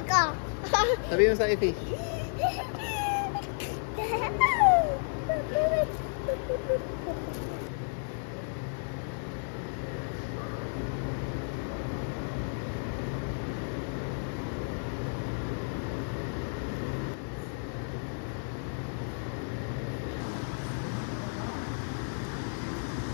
Sabi mo sa fish.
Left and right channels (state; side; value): silent; right; digital silence